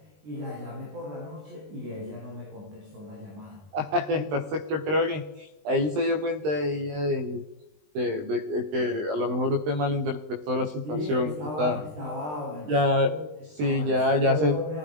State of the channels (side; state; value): left; late; 20 ms